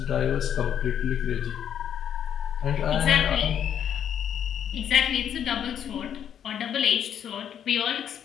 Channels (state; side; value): quieter; right; 9.3 dB